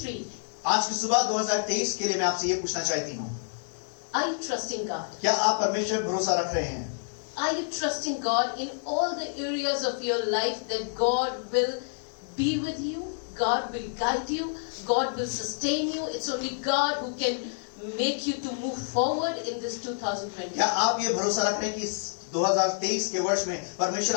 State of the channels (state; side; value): silent; right; 59 dB below the other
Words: आज की सुबह 2023 के लिए मैं आपसे ये पूछना चाहती हूँ, Are you trusting God? क्या आप परमेश्वर में भरोसा रख रहे हैं? Are you trusting God in all the areas of your life that God will be with you? God will guide you. God will sustain you. It's only God who can make you to move forward in this 2020. क्या आप ये भरोसा रख रहे हैं कि इस 2023 के वर्ष में परमेश्वर